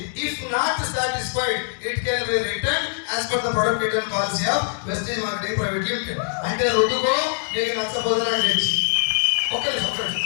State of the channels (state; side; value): silent; right; digital silence